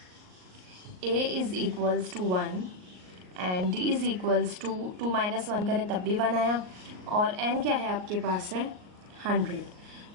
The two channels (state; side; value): late; left; 38 ms